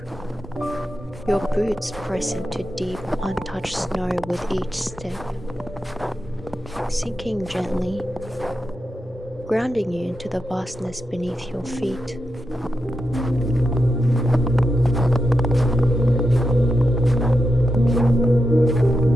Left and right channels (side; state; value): both; normal; correlation 0.87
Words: Your boots press into deep, untouched snow with each step, sinking gently, grounding you into the vastness beneath your feet.